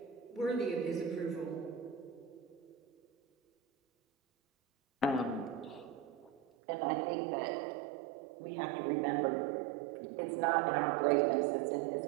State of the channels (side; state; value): left; drops out; at 6.4 s